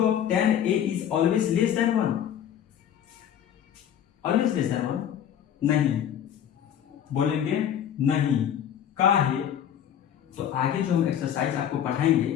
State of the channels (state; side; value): quieter; right; 9.7 dB